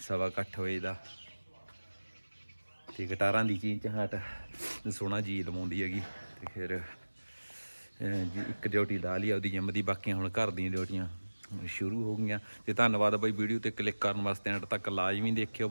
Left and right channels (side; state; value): both; inverted; correlation -1.00